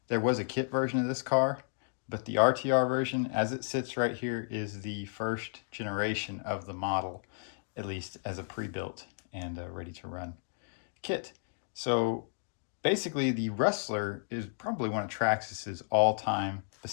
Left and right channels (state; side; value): silent; right; digital silence